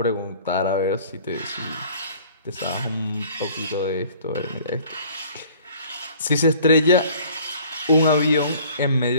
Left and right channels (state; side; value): inverted; both; correlation -0.51